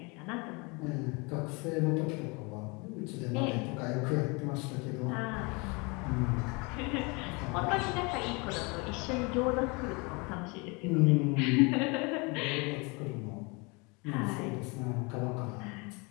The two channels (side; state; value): right; quieter; 29.1 dB